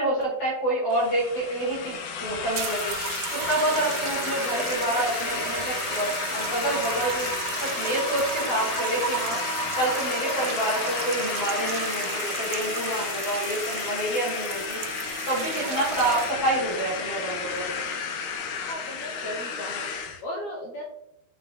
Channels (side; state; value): right; late; 12 ms